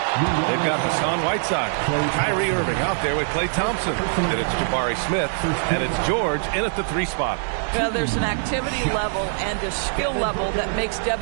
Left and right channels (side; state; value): left; silent; digital silence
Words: they've got Hassan Whiteside, Kyrie Irving out there with Klay Thompson, and it's Jabari Smith, and it's George in at the 3 spot. Well, there's an activity level and a skill level that makes